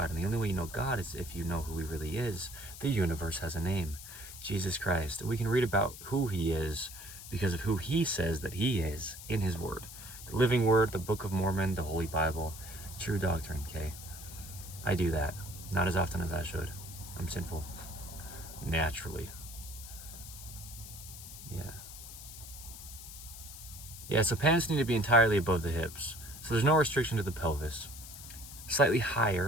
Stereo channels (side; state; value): left; noise; hiss, 13 dB below the sound